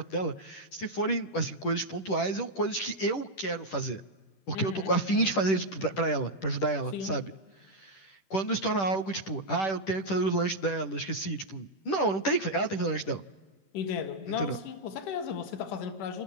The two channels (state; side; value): late; right; 10 ms